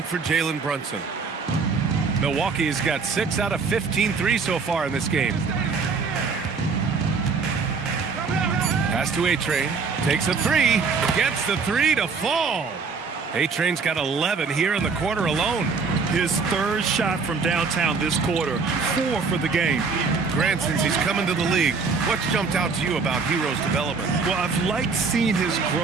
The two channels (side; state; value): left; quieter; 4.9 dB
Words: for Jalen Brunson. Milwaukee has got 6 out of 15 threes so far in this game. Pass to A-Train, takes a 3, gets the 3 to fall. A-Train's got 11 here in the quarter alone. His third shot from downtown this quarter, 4 for the game. Grant, since he's coming to the league, what's jumped out to you about Hero's development? Well, I've liked seeing his